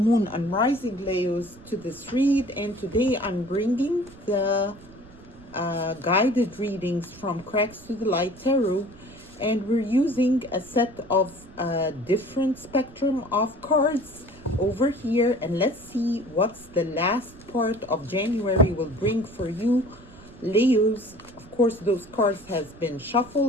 Moon, and Rising Leos to this read. And today I'm bringing the guided readings from Cracks to the Light Tarot, and we're using a set of different spectrum of cards over here. And let's see what's the last part of January will bring for you, Leos. Of course, those cards has been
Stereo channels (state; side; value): noise; right; rumble, 22 dB below the sound